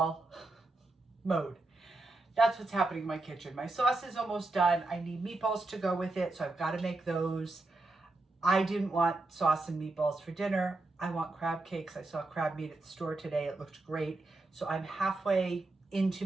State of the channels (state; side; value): quieter; left; 3.0 dB